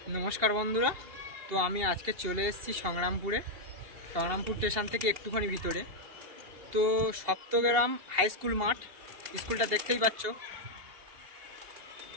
নমস্কার বন্ধুরা, তো আমি আজকে চলে এসেছি সংগ্রামপুর স্টেশন থেকে একটুখানি ভিতরে। তো সপ্তগ্রাম হাই স্কুল মাঠ, স্কুলটা দেখতেই পাচ্ছ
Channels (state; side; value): late; left; 2.8 ms